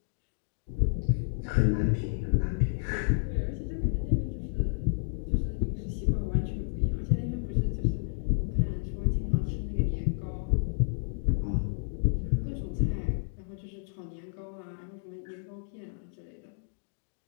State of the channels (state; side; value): silent; right; digital silence